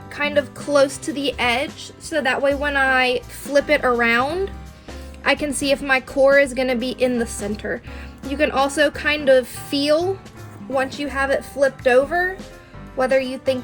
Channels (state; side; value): identical; both; correlation 1.00